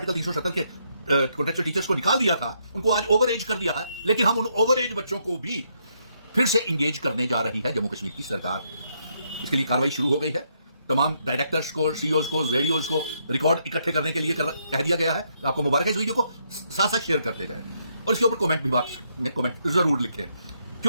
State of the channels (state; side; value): inverted; both; correlation -0.75